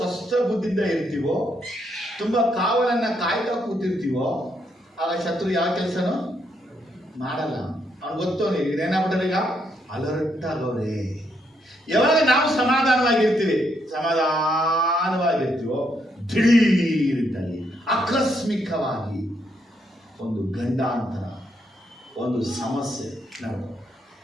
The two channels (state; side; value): normal; both; correlation 0.76